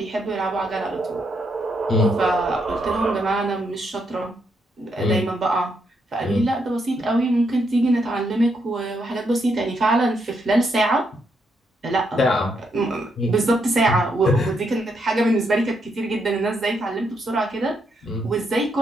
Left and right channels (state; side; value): normal; both; correlation 0.78